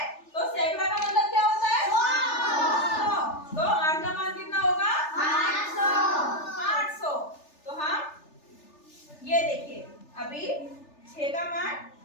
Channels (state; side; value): late; right; 3.4 ms